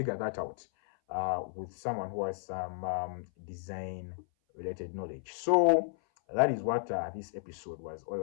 that out with someone who has some design related knowledge. So that is what this episode was all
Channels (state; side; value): silent; right; 55 dB below the other